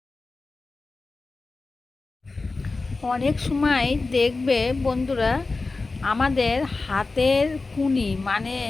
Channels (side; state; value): right; quieter; 3.7 dB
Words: অনেক সময় দেখবে বন্ধুরা, আমাদের হাতের কুনি মানে